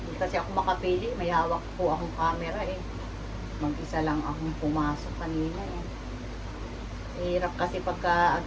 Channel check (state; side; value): identical; both; correlation 1.00